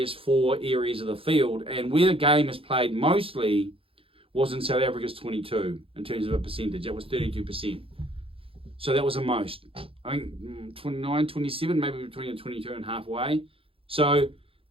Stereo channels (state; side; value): late; left; 0.27 ms